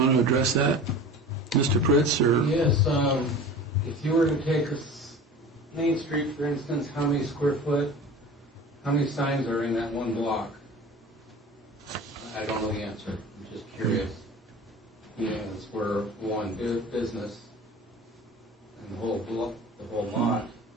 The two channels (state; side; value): normal; both; correlation 0.38